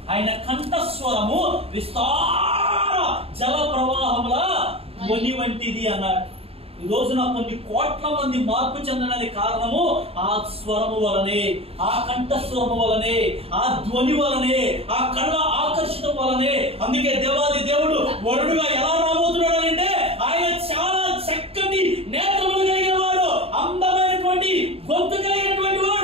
ఆయన కంఠస్వరము విస్తార జల ప్రవాహముల ధ్వని వంటిది అన్నాడు. ఈ రోజున కొన్ని కోట్ల మంది మార్పు చెందడానికి కారణము ఆ స్వరము వలనే, ఆ కంఠస్వరము వలనే, ఆ ధ్వని వలనే, ఆ కళ్ళ ఆకర్షితం వలనే. అందుకే దేవాది దేవుడు వరుడుగా ఎలా రాబోతున్నాడు అంటే ఆయన చాలా చక్కటి నేత్రములు కలిగిన వాడు, అందమైనటువంటి గొంతు కలిగినటువంటి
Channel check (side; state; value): left; late; 0.28 ms